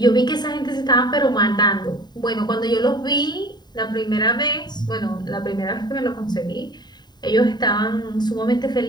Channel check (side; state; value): right; late; 0.20 ms